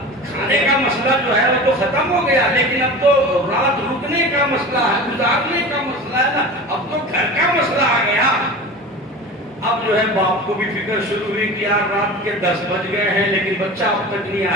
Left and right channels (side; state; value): both; normal; correlation 0.34